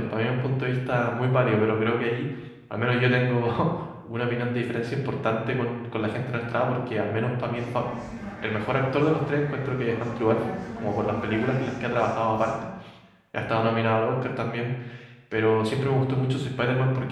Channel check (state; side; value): identical; both; correlation 1.00